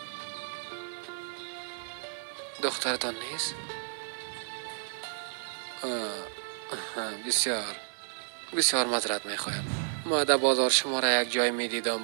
دخترتان نیست؟ بسیار بسیار معذرت میخوایم. ما در بازار شما را یک جای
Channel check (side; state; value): left; silent; digital silence